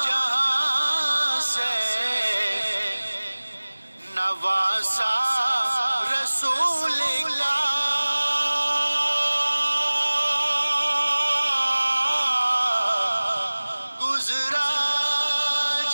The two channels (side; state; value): both; inverted; correlation -1.00